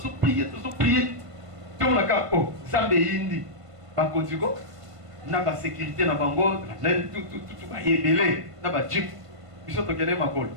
To la ka oh, zambe indi. Ba konzigo. Na ba sécurité na bango, na tout ba yebele, na ba jeep. Biso to kene makolo.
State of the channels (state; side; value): late; left; 1.5 ms